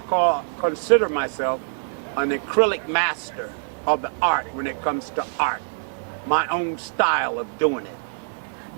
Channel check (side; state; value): left; silent; digital silence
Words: consider myself an acrylic master of the art when it comes to art. My own style of doing it.